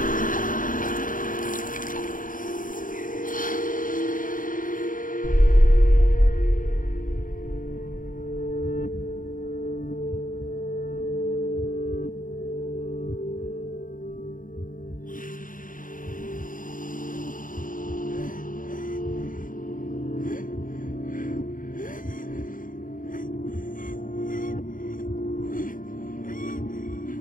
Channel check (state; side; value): late; right; 0.39 ms